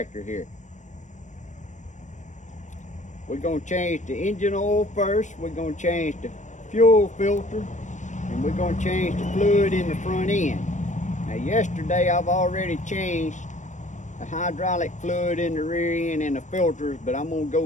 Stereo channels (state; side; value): late; right; 0.35 ms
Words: here. We're going to change the engine oil first, we're going to change the fuel filter, and we're going to change the fluid in the front end. Now yesterday I've already changed the hydraulic fluid in the rear end and the filters, but I'm going to